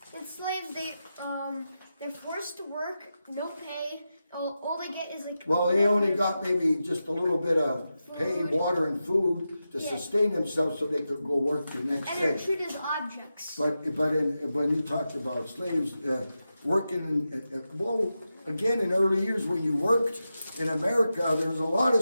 And slaves, they're forced to work, no pay. All they get is like. Well, they only got maybe just a little bit of pay, water and food to Yeah. sustain themselves so they could go work the next And they're day. treated as objects. But when you talked about slaves, working, well, again, in early years when you worked in America, there was a lot of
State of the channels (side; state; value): both; inverted; correlation -0.90